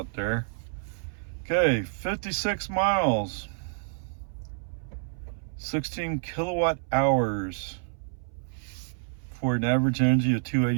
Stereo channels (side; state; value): left; silent; 59 dB below the other